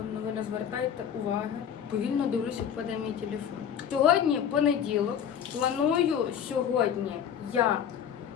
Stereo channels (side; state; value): right; quieter; 8.6 dB